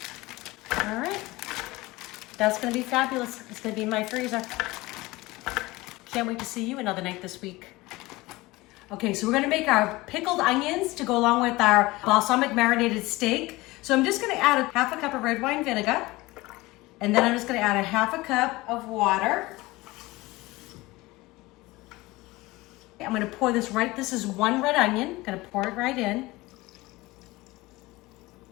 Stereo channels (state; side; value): quieter; right; 20.6 dB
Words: All right, that's gonna be fabulous. It's gonna be in my freezer. Can't wait to see you another night this week. Okay, so we're gonna make our pickled onions to go along with our balsamic marinated steak. So I'm just gonna add 1/2 cup of red wine vinegar, and then I'm just gonna add 1/2 cup of water. I'm gonna pour this right, this is 1 red onion, I'm gonna pour it right in.